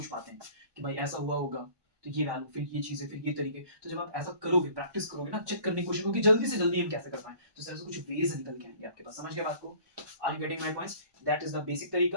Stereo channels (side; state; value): left; late; 1.2 ms